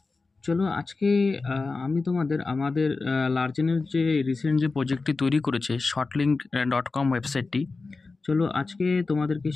চলো আজকে আমি তোমাদের আমাদের লার্জেনের যে রিসেন্ট যে প্রজেক্টটি তৈরি করেছে shortlink.com ওয়েবসাইটটি। চলো আজকে তোমাদেরকে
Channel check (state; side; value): quieter; right; 3.9 dB